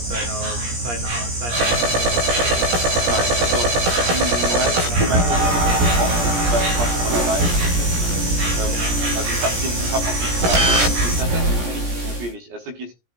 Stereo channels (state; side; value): late; left; 17 ms